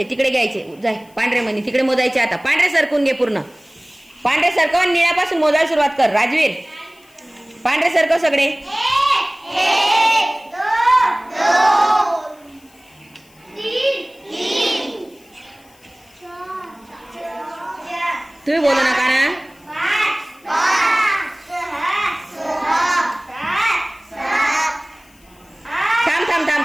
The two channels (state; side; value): noise; left; hiss, 29 dB below the sound